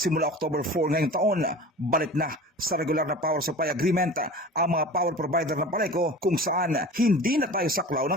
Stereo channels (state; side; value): normal; both; correlation 0.37